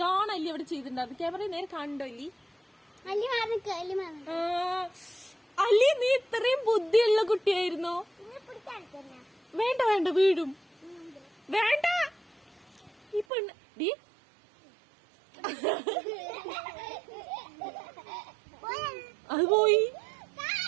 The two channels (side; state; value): left; drops out; at 13.2 s